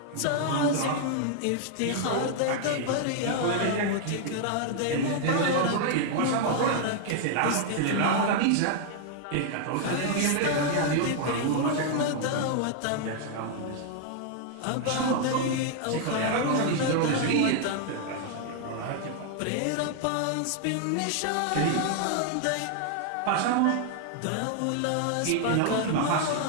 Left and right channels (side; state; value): both; different; correlation 0.00